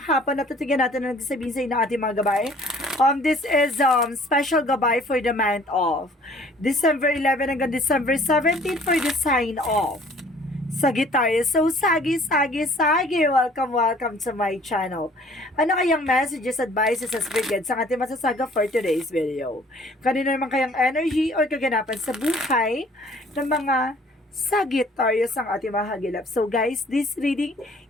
hapon, natutigan natin ang nagsasabihin sa inyo ng ating mga gabay. This is special gabay for the month of December 11 hanggang December 17 for the sign of Sagittarius. So, sagi. Welcome to my channel. Ano kayang messages, advices, as brigades ang ating masasaga for today's video? Kanino naman kayang energy or kaganapan sa buhay ng mga Sagittarius ang ating mahagilap. So guys, this reading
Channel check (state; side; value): normal; both; correlation 0.55